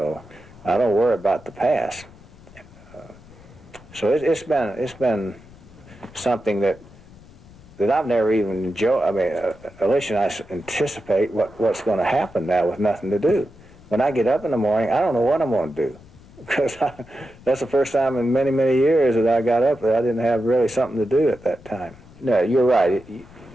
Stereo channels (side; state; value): left; noise; rumble, 22 dB below the sound